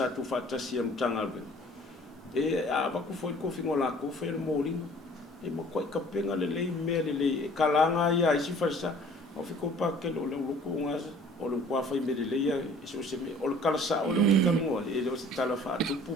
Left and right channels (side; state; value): both; normal; correlation 0.51